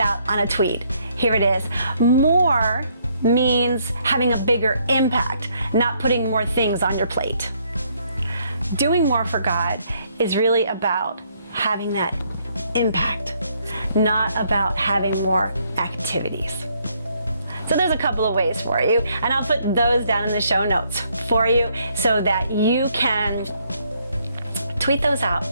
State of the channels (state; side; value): inverted; both; correlation -0.70